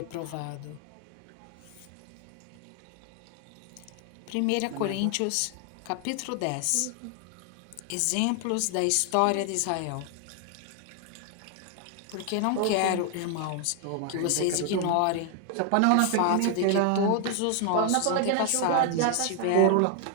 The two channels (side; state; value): both; different; correlation 0.00